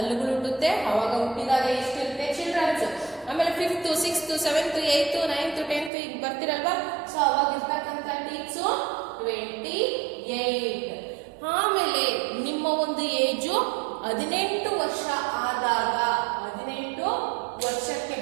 ಹುಟ್ಟುತ್ತೆ. ಅವಾಗ ಹುಟ್ಟಿದಾಗ ಎಷ್ಟಿರುತ್ತೆ ಚಿಲ್ಡ್ರನ್ಸ್? ಆಮೇಲೆ 5th, 6th, 7th, 8th, 9th, 10th ಈಗ ಬರ್ತಿರಲ್ವಾ? ಸೊ ಅವಾಗ ಇರ್ತಕ್ಕಂಥ ಟೀತ್ಸು 28. ಆಮೇಲೆ ನಿಮ್ಮ ಒಂದು ಏಜು 18 ವರ್ಷ ಆದಾಗ, 18 ವರ್ಷಕ್ಕೆ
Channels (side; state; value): left; drops out; at 5.9 s